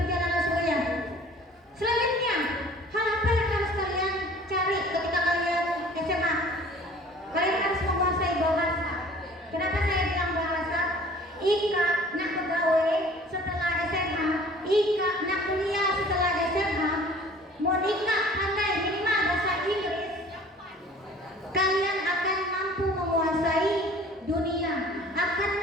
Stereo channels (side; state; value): both; normal; correlation 0.49